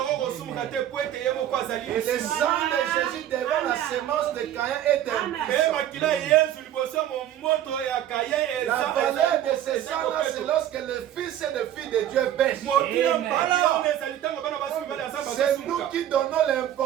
le sang de Jésus devant la sémence de Caïn est impuissant. La valeur de ce sang-là, c'est lorsque les fils et les filles de Dieu pêchent. C'est nous qui donnons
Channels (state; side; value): quieter; left; 11.5 dB